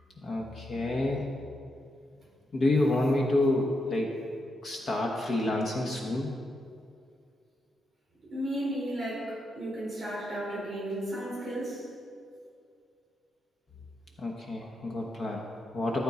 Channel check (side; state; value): both; normal; correlation 0.83